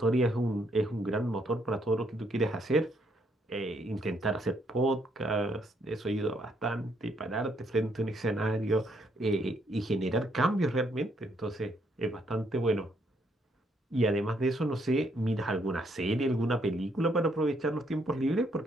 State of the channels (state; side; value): normal; both; correlation 0.72